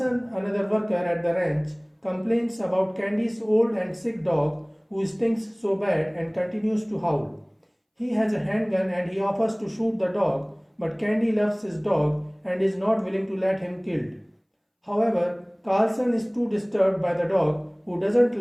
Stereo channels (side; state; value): both; identical; correlation 1.00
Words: another worker at the ranch, complains about Candy's old and sick dog who stinks so bad and continues to howl. He has a handgun and he offers to shoot the dog, but Candy loves his dog and is not willing to let him killed. However, Carlson is too disturbed by the dog who doesn't